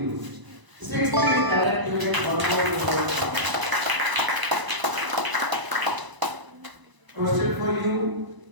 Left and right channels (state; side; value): late; left; 1.0 ms